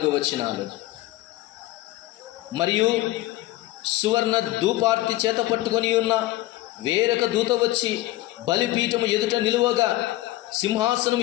వచనాలు. మరియు సువర్ణ ధూపార్తి చేత పట్టుకొని ఉన్న వేరొక దూత వచ్చి బలిపీఠము ఎదుట నిలువగా, సింహాసనం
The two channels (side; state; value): right; quieter; 17.2 dB